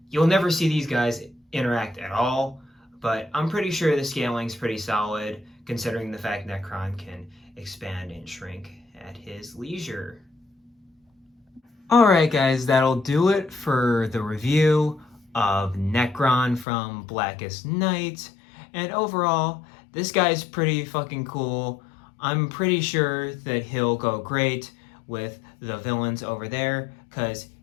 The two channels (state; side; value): drops out; right; at 16.7 s